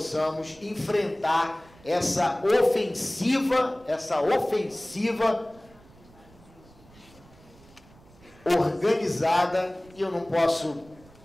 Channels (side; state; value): right; noise; rumble, 25 dB below the sound